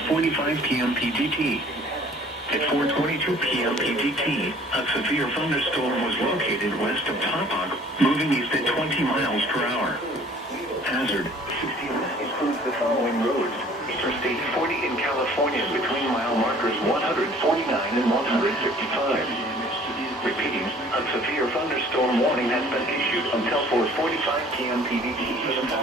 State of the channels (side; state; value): both; normal; correlation 0.53